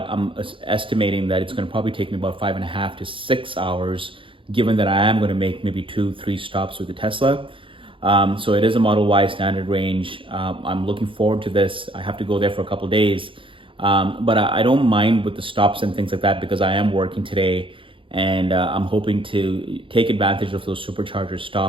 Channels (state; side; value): late; left; 0.25 ms